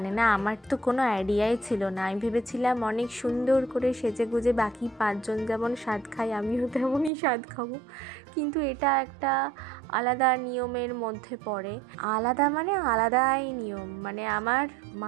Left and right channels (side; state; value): left; drops out; at 7.1 s